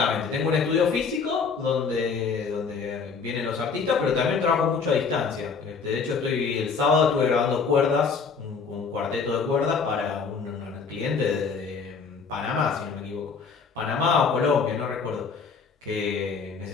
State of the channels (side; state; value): right; quieter; 5.3 dB